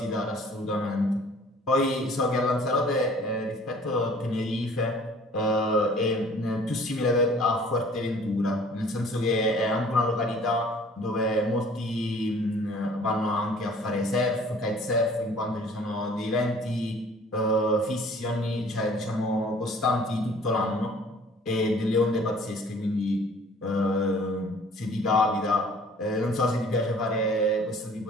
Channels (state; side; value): normal; both; correlation 0.52